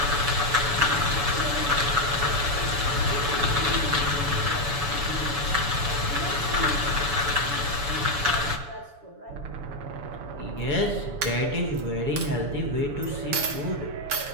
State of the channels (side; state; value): left; late; 7.0 ms